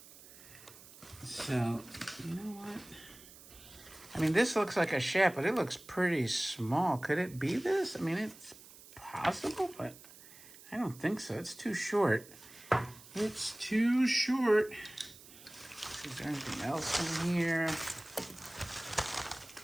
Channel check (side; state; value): right; noise; hiss, 20 dB below the sound